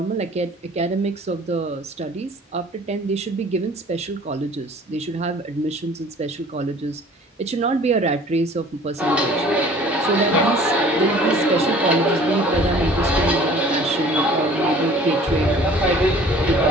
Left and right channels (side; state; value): both; normal; correlation 0.50